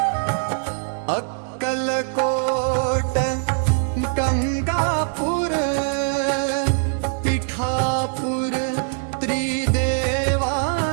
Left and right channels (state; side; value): silent; left; digital silence